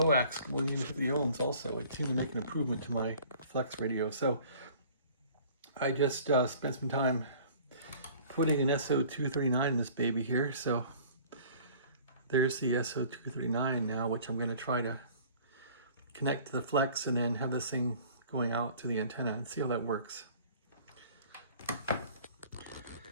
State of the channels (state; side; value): inverted; both; correlation -0.50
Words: going into 50 ohms also. It seemed to make an improvement to my flex radio. So I just spent some time putting an SO-239 in this baby here. So there's the SO-239 now, which I'm going to try to connect to the flex and then have this thing going out to the antenna and see how that works.